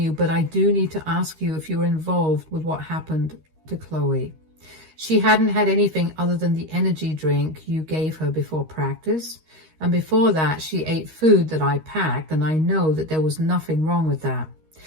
but I do need to ask you if you were involved with what happened to Chloe. She hadn't had anything other than the energy drink you gave her before practice. And before that, she ate food that I packed, and I know that there was nothing wrong with that.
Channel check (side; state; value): left; late; 13 ms